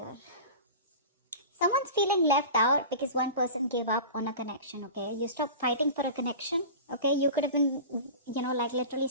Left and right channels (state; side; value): inverted; both; correlation -0.33